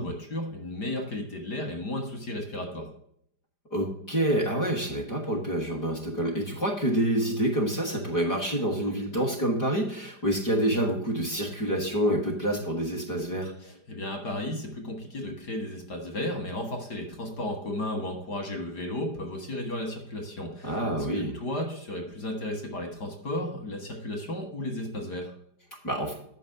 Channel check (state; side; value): late; right; 5.0 ms